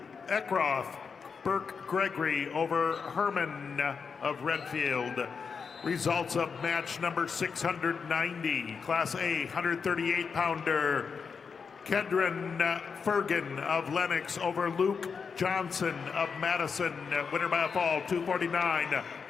Eckroth, Burke Gregory over Herman of Redfield. Results of match number 690. Class A 138-pounder. Kedron Fergan of Lennox over Luke Johnson of Madison. Winner by a fall, 249.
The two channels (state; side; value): quieter; right; 5.7 dB